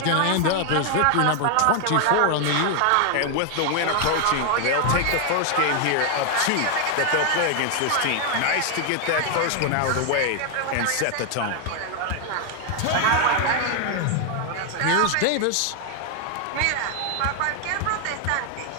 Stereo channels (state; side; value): different; both; correlation 0.00